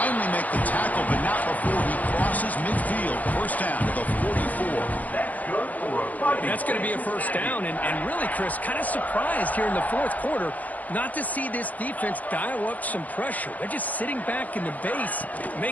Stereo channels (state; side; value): late; right; 0.077 ms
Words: make the tackle, but not before he crosses midfield. First down to the 44. That's going to be a first down, and really, Chris, kind of surprised here in the fourth quarter not to see this defense dial up some pressure. They're just sitting back in the base,